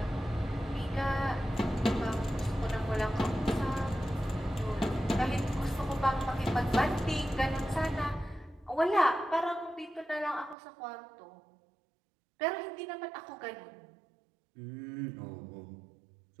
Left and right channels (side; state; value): left; drops out; at 10.6 s